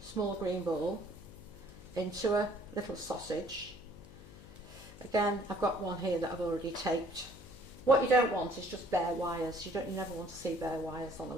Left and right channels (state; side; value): noise; left; hum, 18 dB below the sound